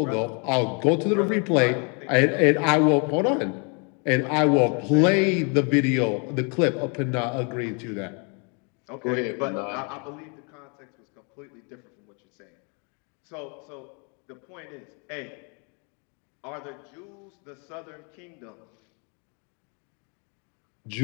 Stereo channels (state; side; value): quieter; right; 36.1 dB